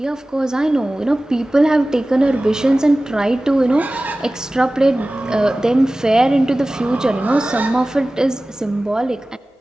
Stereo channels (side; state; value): both; normal; correlation 0.97